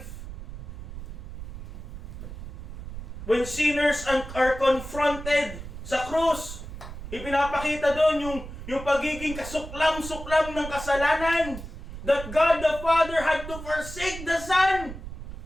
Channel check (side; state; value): right; noise; rumble, 10 dB below the sound